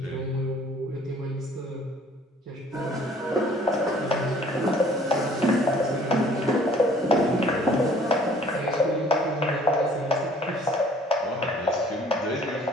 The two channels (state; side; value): normal; both; correlation 0.56